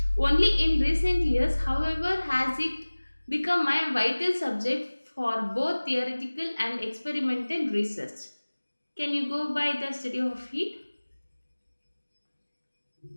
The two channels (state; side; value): inverted; both; correlation -1.00